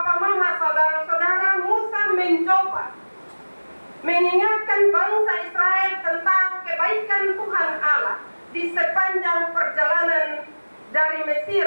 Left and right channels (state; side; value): inverted; both; correlation -1.00